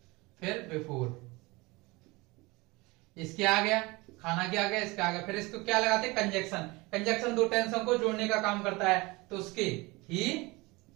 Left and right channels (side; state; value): left; quieter; 23.6 dB